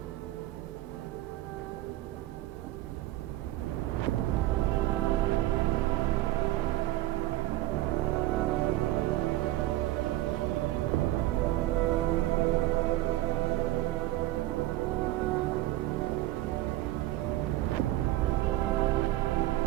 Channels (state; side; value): quieter; left; 15.9 dB